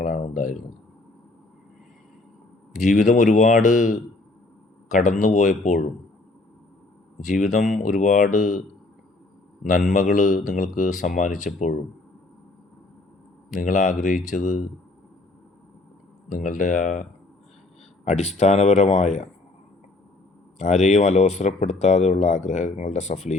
ഉണ്ടായിരുന്നത്. ജീവിതം ഒരുപാട് കടന്നുപോയപ്പോഴും, ജീവിതം ഒരുപാട് നന്മകൾ നിങ്ങൾക്ക് സമ്മാനിച്ചപ്പോഴും നിങ്ങൾ ആഗ്രഹിച്ചത് നിങ്ങളുടെ ആ അടിസ്ഥാനപരമായ, ആരെയും അലോസരപ്പെടുത്താതെയുള്ള ആഗ്രഹങ്ങളുടെ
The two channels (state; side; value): quieter; right; 3.1 dB